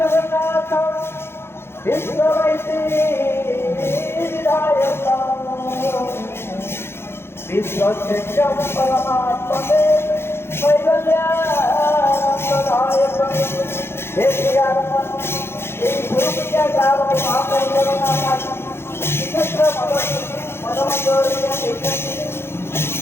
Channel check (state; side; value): late; right; 0.12 ms